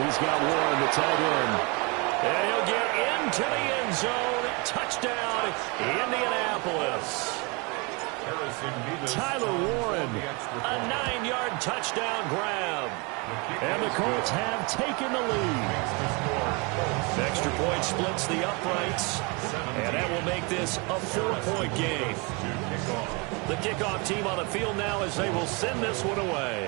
he's got Warren, the tight end. And he'll get into the end zone. Touchdown, Indianapolis. Tyler Warren, a 9-yard touchdown grab. And the Colts have taken the lead. Extra point splits the uprights. And that will make this a 4-point game. The kickoff team on the field now as they will send this one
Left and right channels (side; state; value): left; quieter; 29.9 dB